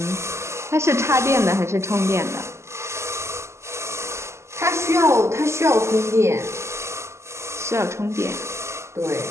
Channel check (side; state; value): left; late; 0.13 ms